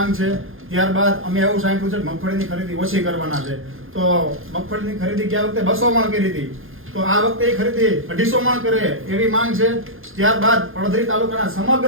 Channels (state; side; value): late; left; 0.60 ms